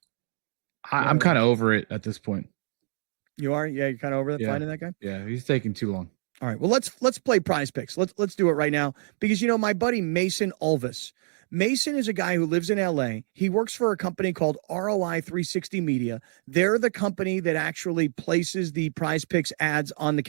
I'm kind of over it at this point. You are? Yeah, you're kind of over finding that guy? Yeah, he's taking too long. All right. Well, let's play prize picks. Let's do it right now because, you know, my buddy Mason Ulvis Mason is a guy who lives in LA. He works for a company called ROI 360 Media. They're the company that actually places the Prize Picks ads on the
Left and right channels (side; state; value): left; silent; digital silence